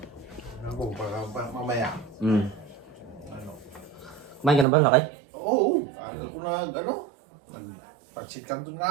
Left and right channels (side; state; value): left; drops out; at 4.7 s